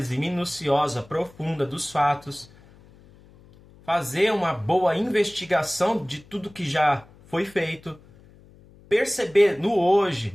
minuciosa, profunda dos fatos, fazer uma boa investigação de tudo que já foi feito, perceber no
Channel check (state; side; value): noise; left; hum, 25 dB below the sound